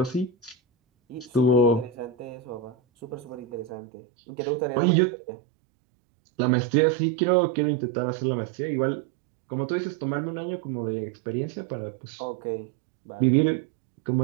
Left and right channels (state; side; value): drops out; left; at 3.7 s